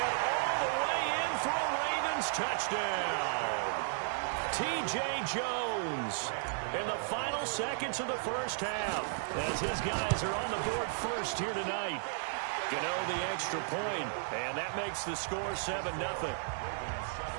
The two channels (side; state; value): left; silent; digital silence